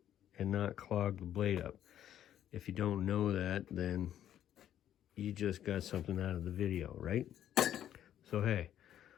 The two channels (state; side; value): quieter; right; 11.0 dB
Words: and not clog the blade up. If you don't know that, then you just got something out of the video, right? So hey,